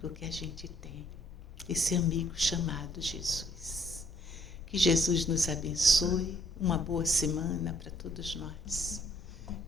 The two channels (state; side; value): normal; both; correlation 0.64